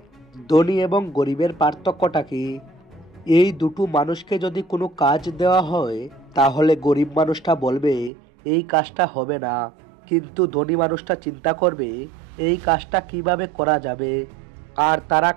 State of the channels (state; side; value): drops out; left; at 8.1 s